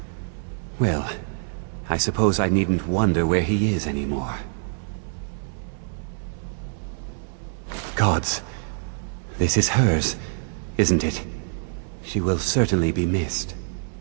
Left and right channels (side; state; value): left; silent; digital silence